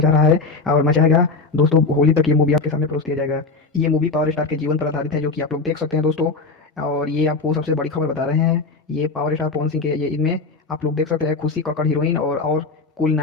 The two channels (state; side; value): quieter; right; 4.0 dB